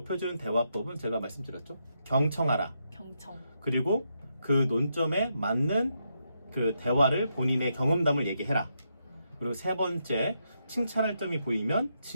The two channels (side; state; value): both; inverted; correlation -0.81